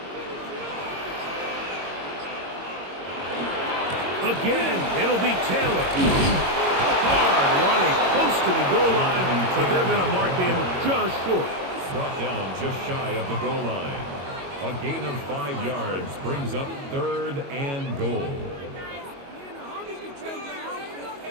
Again, it'll be Taylor. Hard running close to the goal line, but they're going to mark him just short. Brought down just shy of the goal line. A gain of 5 yards brings up third and goal.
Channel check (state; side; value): late; left; 22 ms